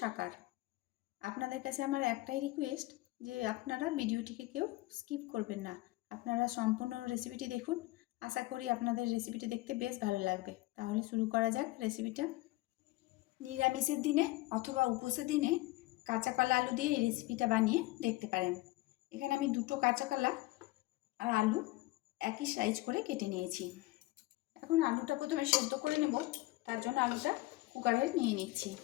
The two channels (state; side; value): quieter; right; 19.8 dB